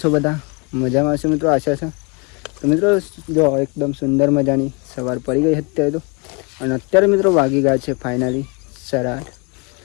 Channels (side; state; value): right; quieter; 31.4 dB